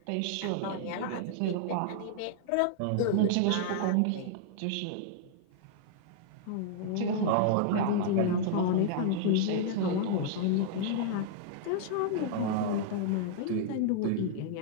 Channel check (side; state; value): both; different; correlation -0.01